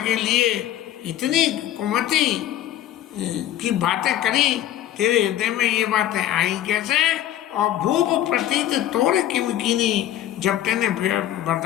लिए इतनी कुमति की बातें करी। तेरे हृदय में ये बातें आई कैसे। और भूप प्रतीत तोड़ किमकीनी, जब तेने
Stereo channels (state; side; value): quieter; right; 12.3 dB